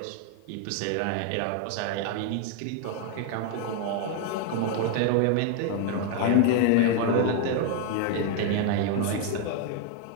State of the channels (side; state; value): both; different; correlation 0.00